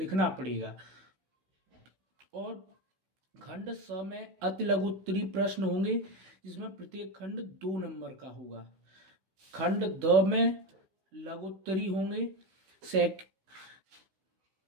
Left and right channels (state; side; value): late; left; 16 ms